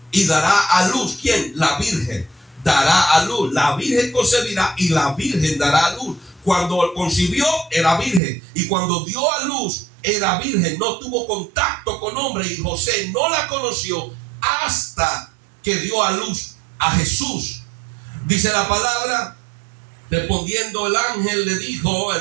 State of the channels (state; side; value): drops out; left; at 8.2 s